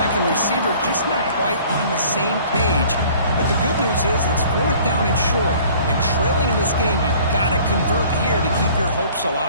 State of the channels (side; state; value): both; inverted; correlation -0.52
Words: and receiver just not quite on the same page. But the good news is it's fourth down and short. And trailing in this game, you've got to convert here to keep your hopes